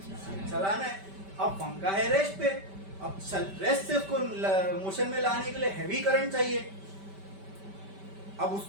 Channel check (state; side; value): late; left; 5.1 ms